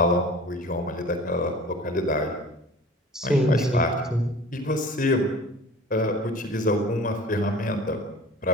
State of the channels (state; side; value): normal; both; correlation 0.42